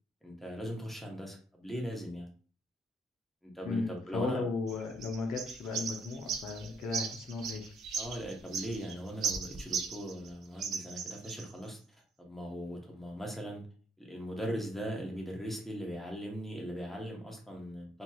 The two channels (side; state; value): both; normal; correlation 0.69